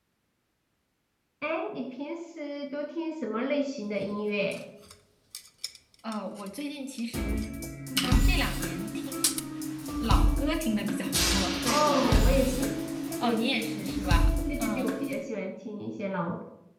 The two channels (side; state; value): both; identical; correlation 1.00